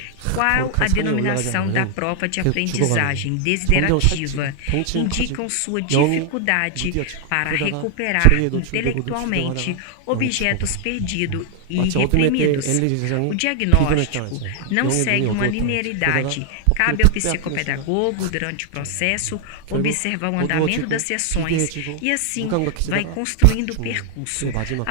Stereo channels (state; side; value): different; both; correlation 0.00